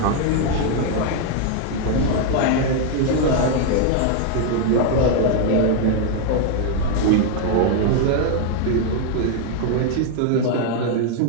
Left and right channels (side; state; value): both; different; correlation 0.00